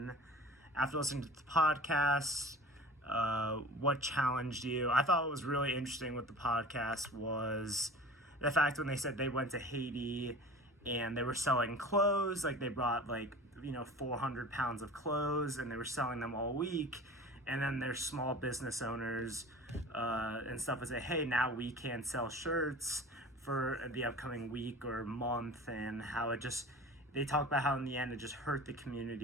after listening to the podcast, what challenged you? I thought what was really interesting with the podcast was the fact when they said they went to Haiti and they were selling clothes, like they brought 400 pounds of clothes and they were selling them all week. And then there's small business owners and stuff would say, hey, now we can sell shirts for the upcoming week or month, and how it just, they talk about how in the end it just hurt the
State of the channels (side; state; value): both; normal; correlation 0.39